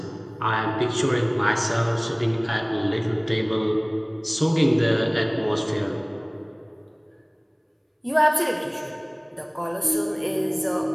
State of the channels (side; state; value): both; identical; correlation 1.00